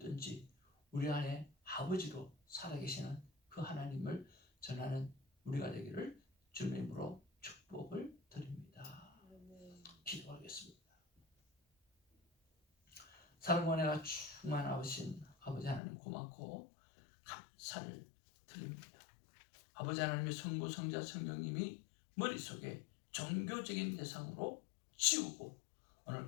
우리 안에 아버지로 살아계시는 그 하나님을 전하는 우리가 되기를 주님으로 축복을 드립니다. 기도하겠습니다. 사랑과 은혜가 충만하신 아버지 하나님 고맙고 감사를 드립니다. 아버지 하나님의 성부, 성자, 성령님이 머릿속에 종교적인 대상으로 지우고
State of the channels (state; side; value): drops out; right; at 15.8 s